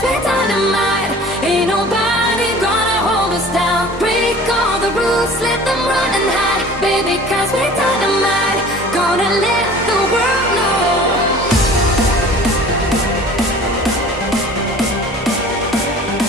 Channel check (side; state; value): both; normal; correlation 0.45